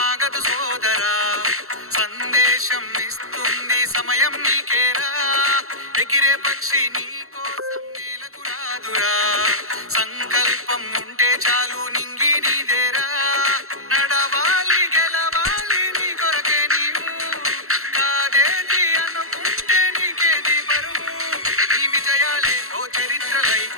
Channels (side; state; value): left; late; 0.63 ms